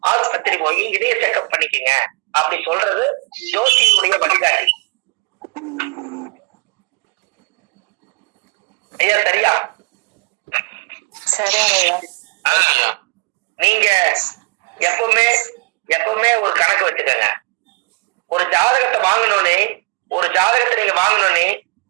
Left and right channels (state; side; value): quieter; left; 28.3 dB